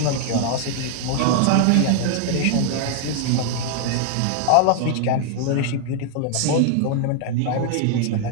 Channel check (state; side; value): different; both; correlation 0.00